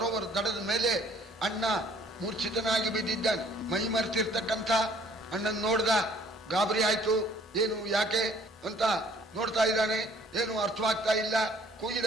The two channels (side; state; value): both; normal; correlation 0.58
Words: ದಡದ ಮೇಲೆ ಅಣ್ಣ ಮೂರ್ಛಿತನಾಗಿ ಬಿದ್ದಿದ್ದಾನೆ. ಮೈ ಮರೆತಿರ್ತಕ್ಕಂಥ ಅಣ್ಣನ್ ನೋಡ್ದ. ಗಾಬರಿ ಆಯ್ತು. ಏನು ಯಾಕೆ ಅಂತ ನೋಡ್ತಾ ಇದ್ದಾನೆ. ಏನು ಅರ್ಥವಾಗ್ತಾ ಇಲ್ಲ.